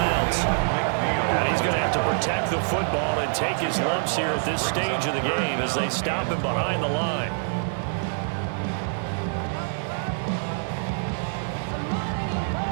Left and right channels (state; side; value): silent; left; 61 dB below the other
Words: And he's going to have to protect the football and take his lumps here at this stage of the game as they stop him behind the line.